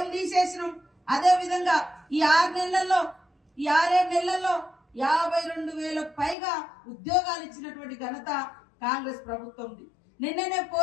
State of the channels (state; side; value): drops out; right; at 6.4 s